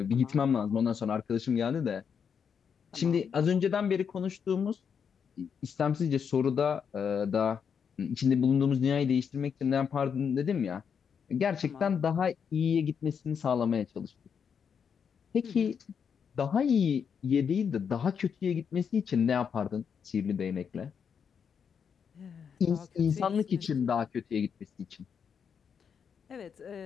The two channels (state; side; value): quieter; right; 7.0 dB